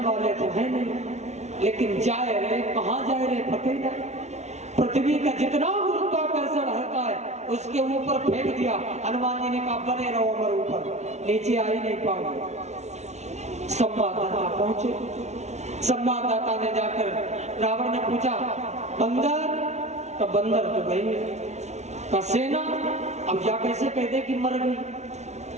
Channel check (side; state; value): left; late; 0.32 ms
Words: वाले तो है नहीं, लेकिन जाए रहे कहाँ जाए रहे पता नहीं। पृथ्वी का जितना गुरुत्वाकर्षण हल्का है उसके ऊपर फेंक दिया। हनुमान जी ने कहा बने रहो अमर ऊपर, नीचे आ ही नहीं पाओगे। संवाददाता पहुंचे। संवाददाता ने जाकर रावण ने पूछा बंदर, तो बंदर तो गई का सेना, अब या कैसे कह दे कि मर गई।